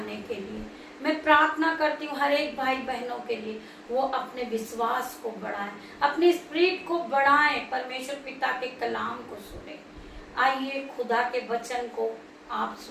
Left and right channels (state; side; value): identical; both; correlation 1.00